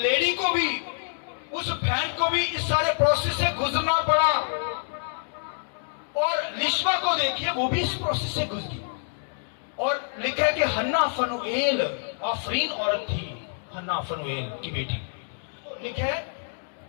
को भी, उस बहन को भी इस सारे प्रोसेस से गुजरना पड़ा और लिशवा को देखिए वो भी इस प्रोसेस से गुजरी। और लिखा है कि हन्ना फनुएल आफरीन औरत थी, हन्ना फनुएल की बेटी। लिखा है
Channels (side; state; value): right; silent; digital silence